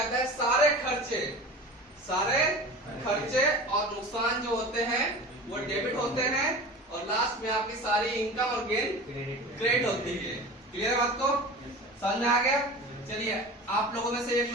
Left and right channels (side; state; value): both; normal; correlation 0.35